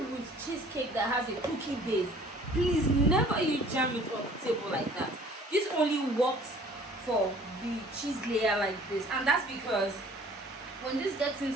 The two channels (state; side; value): normal; both; correlation 0.52